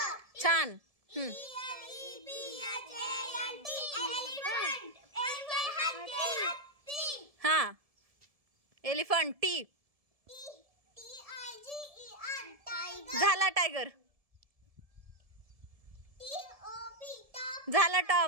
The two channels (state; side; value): late; left; 1.7 ms